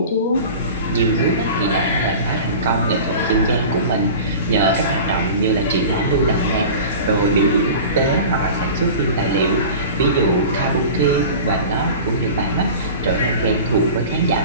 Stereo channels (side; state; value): both; inverted; correlation -0.36